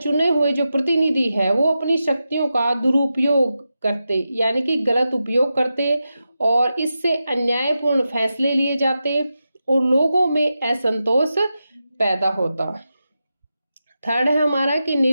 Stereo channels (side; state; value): both; inverted; correlation -0.90